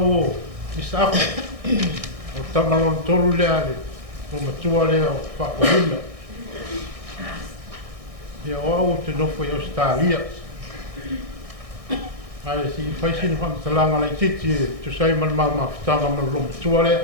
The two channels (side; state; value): left; late; 1.6 ms